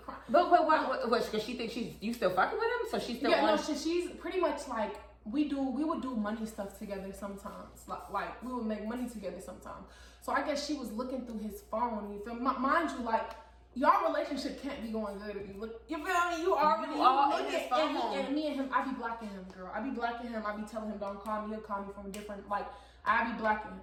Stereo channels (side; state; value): both; identical; correlation 1.00